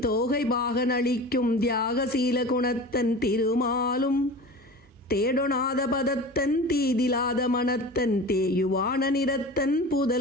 பாகன் அளிக்கும் தியாகசீல குணத்தன் திருமாலும். தேடொணாத பதத்தன் தீதிலாத மனத்தன் தேயுவான நிறத்தன்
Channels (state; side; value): normal; both; correlation 0.35